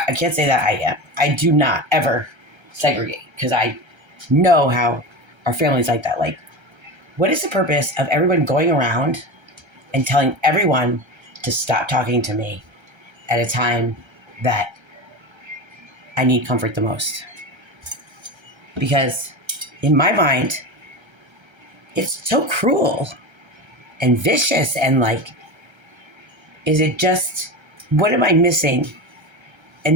can't say that I am. I do not ever segregate because I know how our family's like that. Like, what is the purpose of everyone going around and telling everyone to stop talking to me at a time that I need comfort the most? Because in my mind, it's so cruel and vicious and like, is it just, what am I missing?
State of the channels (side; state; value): left; late; 1.3 ms